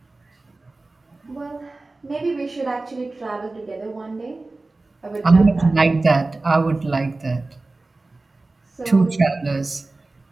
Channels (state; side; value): quieter; left; 3.2 dB